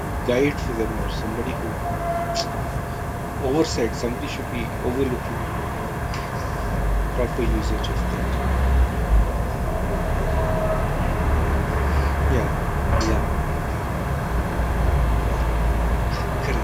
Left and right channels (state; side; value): identical; both; correlation 1.00